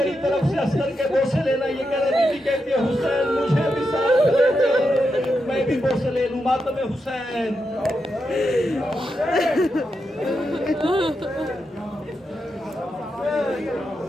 طرف سے اصغر کے بوسے لینا. یہ کہہ رہے بیوی کہتی ہے حسین مجھے بھی ساتھ لے چل، میں بھی بوسے لے لوں. ماتم حسین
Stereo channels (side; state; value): both; normal; correlation 0.86